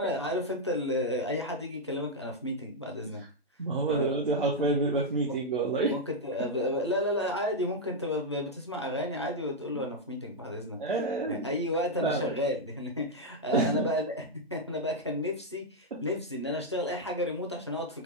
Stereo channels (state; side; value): normal; both; correlation -0.02